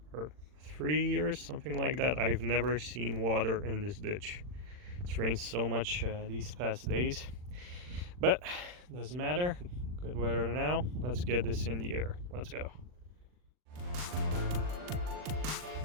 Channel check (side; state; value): left; late; 40 ms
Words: for 3 years, something like that. I've never seen water in this ditch. It's rained so much these past days, but doesn't matter. Good weather now. Let's get this in the air. Let's go.